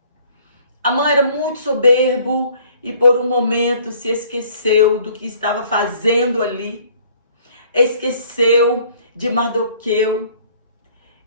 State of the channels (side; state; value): both; inverted; correlation -0.57